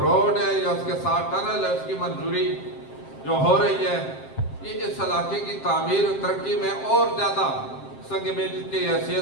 ہے یا اس کے ساتھ ٹنل ہے، اس کی منظوری جو ہو رہی ہے، یہ اس علاقے کی تعمیر و ترقی میں اور زیادہ سنگ میل کی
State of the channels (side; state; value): right; late; 7.6 ms